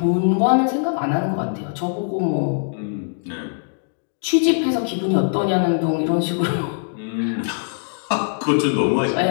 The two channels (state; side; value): silent; right; digital silence